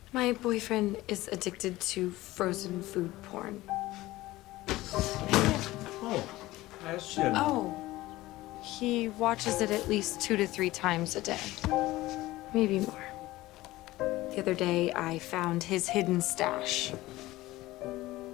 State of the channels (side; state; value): right; quieter; 17.9 dB